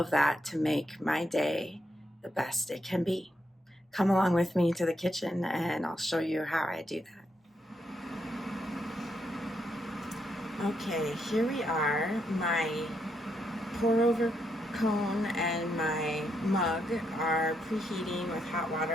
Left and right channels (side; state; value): both; normal; correlation 0.79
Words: that to make my day the best it can be. Come along with me to the kitchen and I'll show you how I do that. Okay, here we are. My pour over cone and my mug are preheating with hot